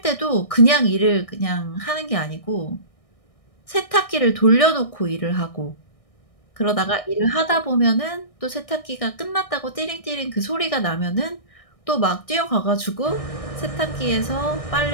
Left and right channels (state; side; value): late; right; 1.6 ms